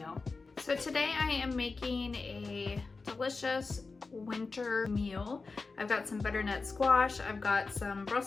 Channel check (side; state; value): right; quieter; 4.1 dB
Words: So today I am making a delicious winter meal. I've got some butternut squash, I've got some